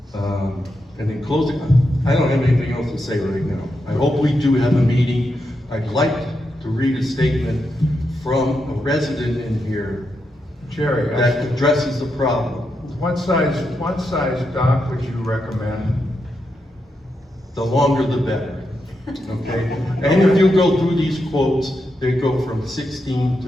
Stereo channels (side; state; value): both; normal; correlation 0.84